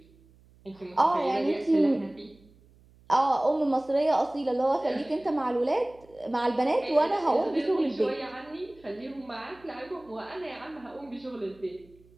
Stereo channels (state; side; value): noise; right; hum, 28 dB below the sound